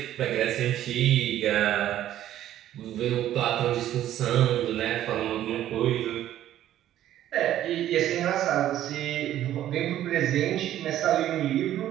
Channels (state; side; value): quieter; left; 12.4 dB